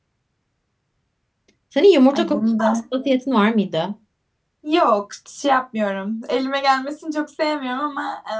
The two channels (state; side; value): identical; both; correlation 1.00